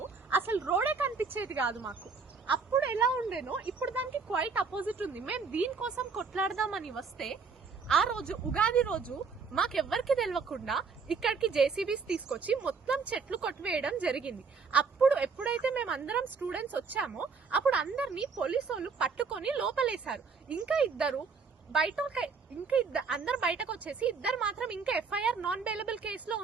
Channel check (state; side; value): quieter; left; 5.1 dB